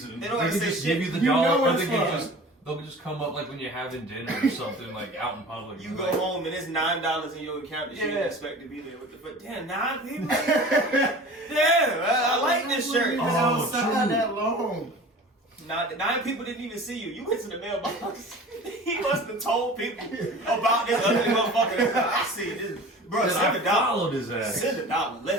They don't have to can say just shit. give you the You know dollar, or it's they can fun. they'll just come up like when you're having dinner or something like out in public. You go like, home and it's $9 in your account that you didn't expect to be there. What the fuck? Damn, 9 people? Damn, I like this shirt. It's Oh, outside true. that long. 9 people didn't even see you. You went to the mailbox. He must have told people about this ugly motherfucker. I see this. Bro, send $1. followed his ass. Send $1.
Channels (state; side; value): normal; both; correlation 0.40